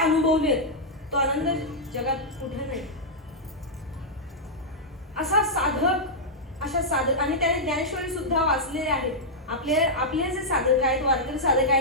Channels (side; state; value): both; normal; correlation -0.07